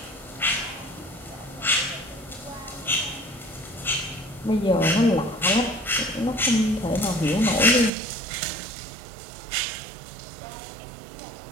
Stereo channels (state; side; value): drops out; left; at 7.9 s